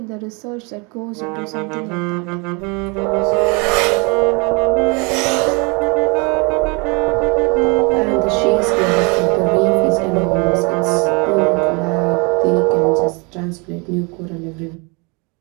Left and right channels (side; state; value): left; quieter; 30.8 dB